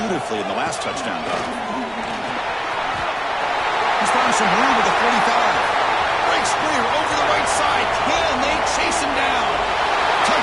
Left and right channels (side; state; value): both; identical; correlation 1.00